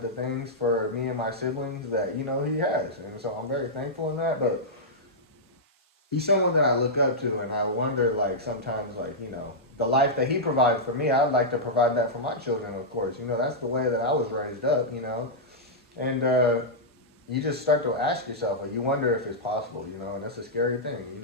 the things for me and my siblings that, he has. And so I'm very thankful in that. But he's someone that I look up to, and I wonder, like, sometimes, like, the life that he provides for me, I'd like to provide that for my children, of course. That's the way that I was raised up. And you just start to ask yourself, like, you wonder if it's possible, and that's a scary thing.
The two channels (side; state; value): both; normal; correlation -0.09